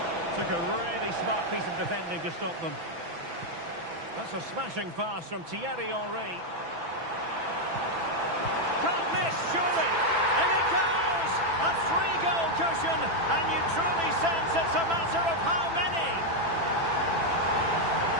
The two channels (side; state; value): left; late; 6.0 ms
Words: Took a really smart piece of defending to stop them. That's a smashing pass from Thierry Henry. Can't miss, surely. And it goes! A 3-goal cushion, and you truly sense it's a matter of how many.